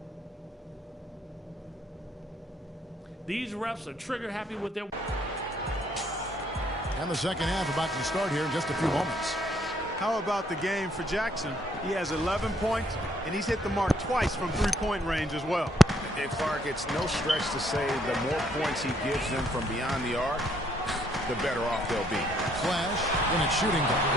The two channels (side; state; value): both; normal; correlation 0.68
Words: These refs are trigger happy with their... And the second half about to start here in just a few moments. How about the game for Jackson? He has 11 points, and he's hit the mark twice from three-point range as well. And Clark, it's no stretch to say the more points he gives them from beyond the arc, the better off they'll be. Flash, and it's shooting